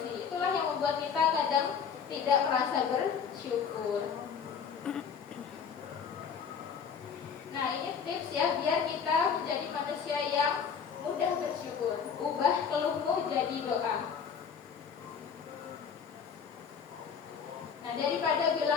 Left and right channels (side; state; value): right; quieter; 6.7 dB